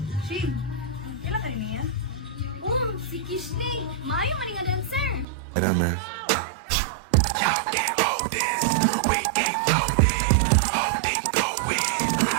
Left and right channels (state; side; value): drops out; left; at 5.2 s